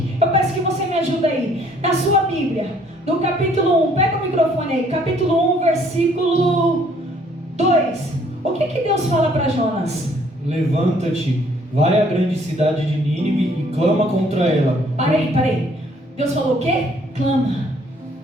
Eu peço que você me ajude aí. Na sua Bíblia, no capítulo 1, pega o microfone aí. Capítulo 1, versículo 2. O que Deus fala para Jonas? Levanta-te, vai à grande cidade de Nínive e clama contra ela. Parei. Deus falou o quê? Clama.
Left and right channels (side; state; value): both; normal; correlation 0.62